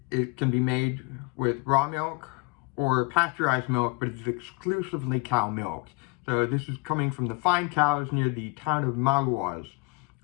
can be made with raw milk or pasteurized milk, but it's exclusively cow milk. So this is coming from the fine cows near the town of Maroilles,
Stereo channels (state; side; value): quieter; right; 29.2 dB